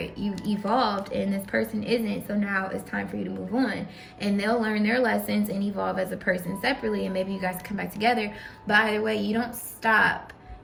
You evolved and this person isn't. So now it's time for you to move on. And they'll learn their lessons and evolve as a person separately. And maybe you guys come back together. But either way, you don't stop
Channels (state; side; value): identical; both; correlation 1.00